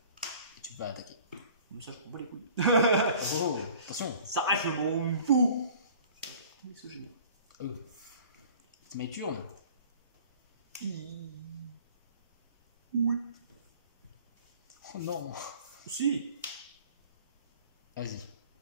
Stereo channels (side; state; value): both; inverted; correlation -0.48